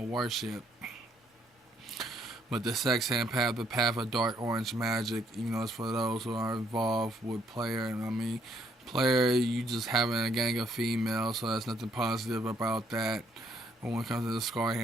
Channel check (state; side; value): normal; both; correlation 0.69